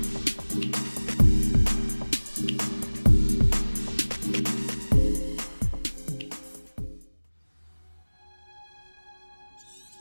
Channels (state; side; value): inverted; both; correlation -1.00